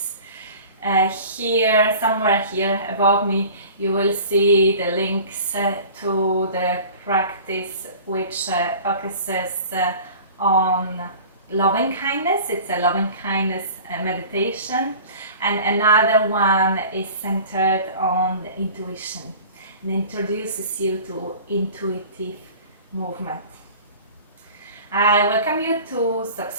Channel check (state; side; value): inverted; both; correlation -0.42